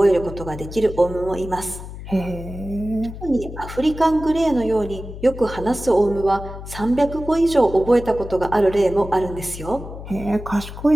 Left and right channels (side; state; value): left; noise; hum, 11 dB below the sound